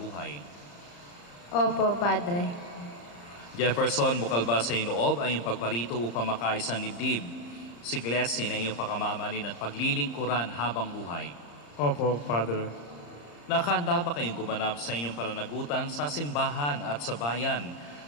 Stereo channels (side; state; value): right; late; 34 ms